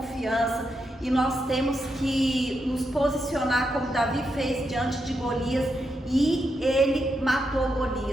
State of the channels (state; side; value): normal; both; correlation 0.84